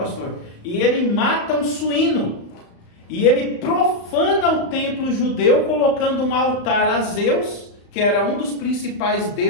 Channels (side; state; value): right; late; 35 ms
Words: e ele mata um suíno. E ele profana o templo judeu, colocando um altar a Zeus, que era um dos principais